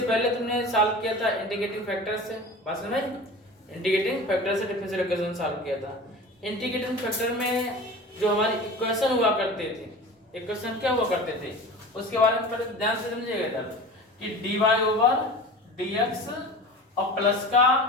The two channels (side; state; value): both; normal; correlation 0.36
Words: पहले तुमने सॉल्व किया था इंटीग्रेटिंग फैक्टर से, बात समझ में? इंटीग्रेटिंग फैक्टर से डिफरेंशियल इक्वेशन सॉल्व किया था। इंटीग्रेटिंग फैक्टर में जो हमारी इक्वेशन हुआ करते थे, इक्वेशन क्या हुआ करते थे उसके बारे में पहले ध्यान से समझिएगा इधर कि dy ओवर dx और प्लस का